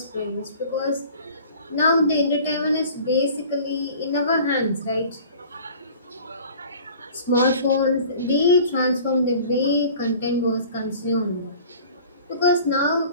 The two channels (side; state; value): both; inverted; correlation -0.45